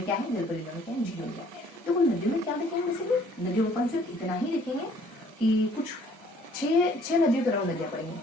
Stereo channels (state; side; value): normal; both; correlation 0.59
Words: क्या है, जल परियोजना में क्या है, झीलों में क्या है। देखो नदियों में क्या देखेंगे, बेसिकली नदियों में अपन सिर्फ इतना ही देखेंगे कि कुछ 6 नदियों के नाम नदियां पढ़ेंगे,